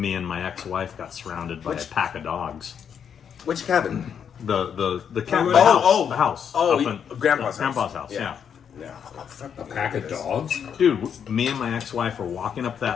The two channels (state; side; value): quieter; right; 7.8 dB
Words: and my ex-wife got surrounded by a pack of dogs. which cabin? The cabin, the house. Oh, up in- Grandpa's house. Grandpa's house. Yeah. Yeah. A pack of dogs. Dude, me and my ex-wife are walking up